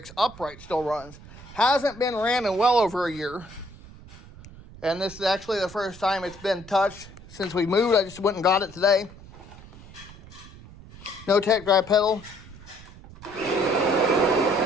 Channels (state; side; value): noise; right; rumble, 19 dB below the sound